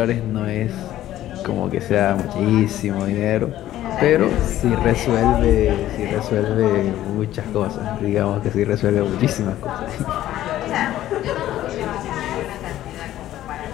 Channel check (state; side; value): quieter; right; 13.4 dB